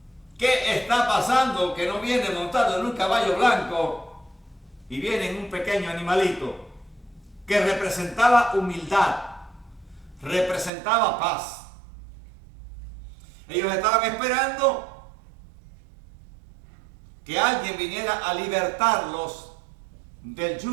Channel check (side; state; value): left; drops out; at 10.7 s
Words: qué está pasando, que no viene montado en un caballo blanco y viene en un pequeño animalito que representaba humildad, representaba paz. Ellos estaban esperando que alguien viniera a libertarlos del